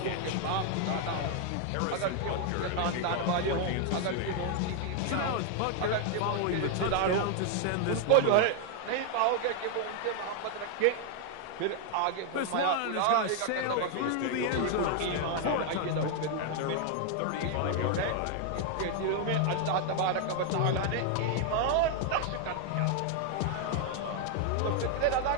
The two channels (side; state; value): both; different; correlation 0.00